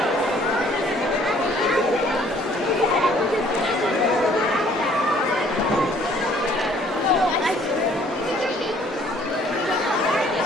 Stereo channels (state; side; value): normal; both; correlation 0.59